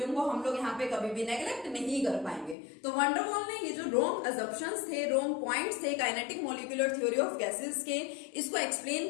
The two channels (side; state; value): right; drops out; at 2.6 s